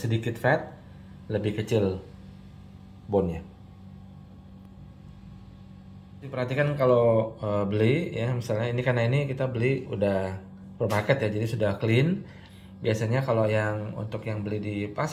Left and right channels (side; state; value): both; identical; correlation 1.00